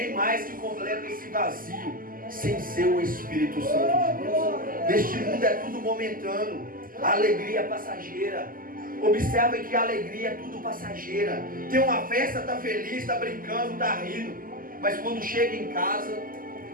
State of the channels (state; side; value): late; left; 0.41 ms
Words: mais que completa esse vazio sem ser o Espírito Santo de Deus. Neste mundo é tudo momentâneo, a alegria é passageira. Observe que a alegria é tudo passageira. Tem uma festa, está feliz, está brincando, está rindo, mas quando chega em casa,